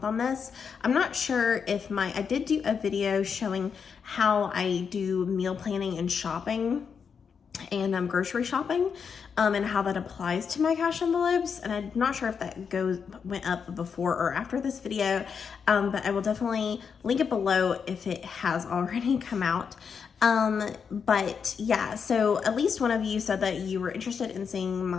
on this. I'm not sure if I did do a video showing how I do meal planning and shopping and grocery shopping, and how that applies to my cash envelopes. And I'm not sure if that went up before or after this video, but I will definitely link it below if it has already come out. But yeah, so at least one of you said that you were interested in seeing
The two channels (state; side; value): quieter; right; 6.4 dB